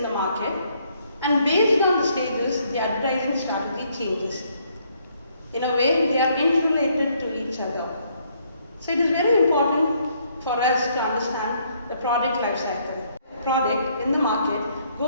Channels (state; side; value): inverted; both; correlation -0.69